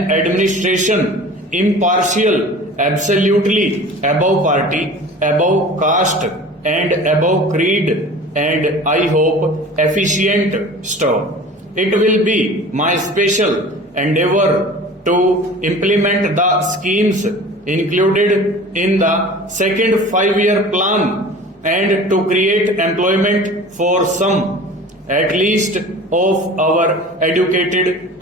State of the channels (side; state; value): both; normal; correlation 0.41